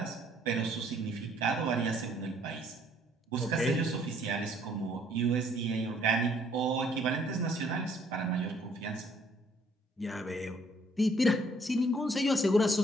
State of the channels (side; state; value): both; normal; correlation 0.63